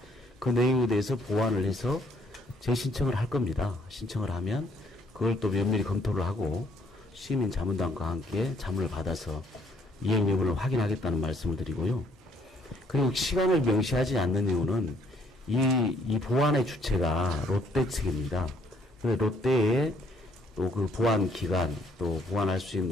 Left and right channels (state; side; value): normal; both; correlation 0.65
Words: 그 내용에 대해서 보완을 해서 재신청을 할 겁니다. 신청을 하면 그걸 또 면밀히 검토를 하고 시민 자문단과 함께 자문을 받아서 이행 여부를 확인하겠다는 말씀을 드리고요. 그리고 시간을 명시하지 않는 이유는 이 보완의 주체가 롯데 측입니다. 롯데의 또 그 보완 기간, 또 보완할 수